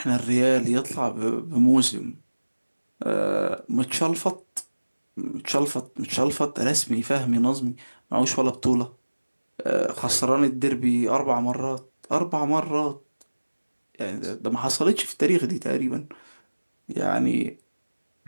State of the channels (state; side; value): inverted; both; correlation -1.00